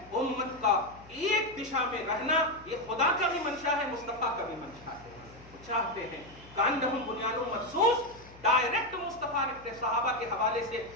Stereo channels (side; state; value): left; noise; hum, 22 dB below the sound